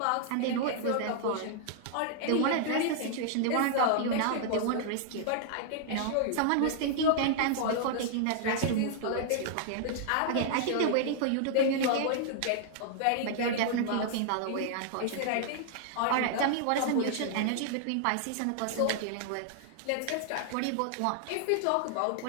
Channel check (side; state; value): both; different; correlation -0.01